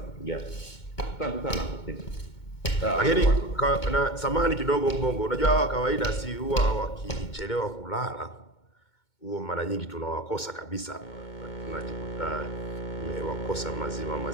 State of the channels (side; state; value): right; late; 2.2 ms